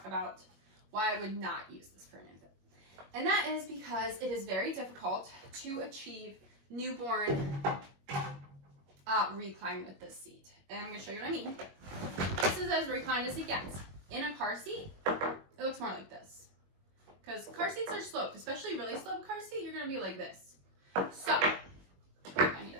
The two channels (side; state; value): left; late; 21 ms